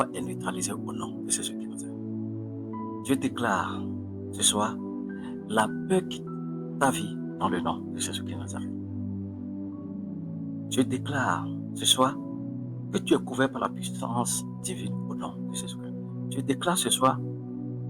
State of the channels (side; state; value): both; identical; correlation 1.00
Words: est neutralisée au nom de Jésus qui Nazareth. Je déclare ce soir la peur quitte ta vie dans le nom de Jésus qui Nazareth. Je déclare ce soir que tu es couvert par la puissance divine au nom de Jésus-Christ. Je déclare ce soir